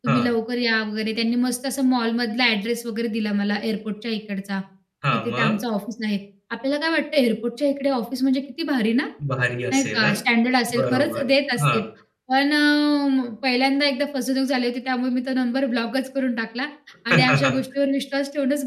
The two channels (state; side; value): identical; both; correlation 1.00